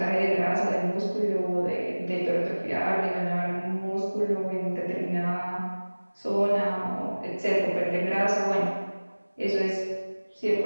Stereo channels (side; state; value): both; inverted; correlation -1.00